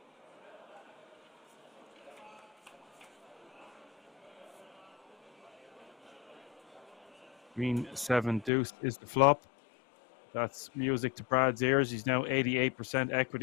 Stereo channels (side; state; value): right; drops out; at 8.5 s